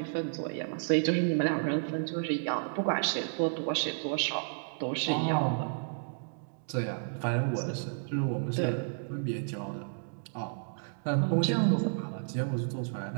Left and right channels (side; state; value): left; silent; digital silence